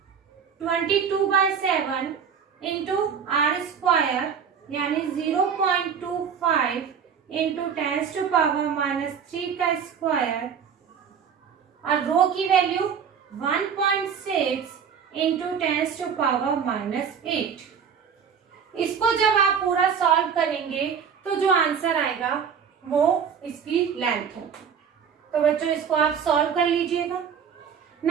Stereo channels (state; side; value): quieter; left; 7.1 dB